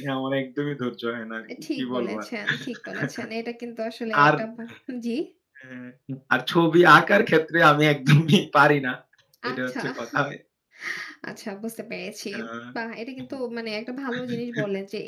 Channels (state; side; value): identical; both; correlation 1.00